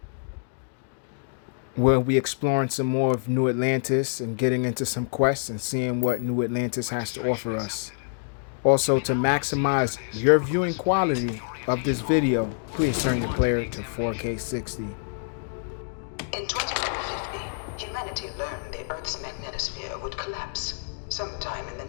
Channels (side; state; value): right; silent; digital silence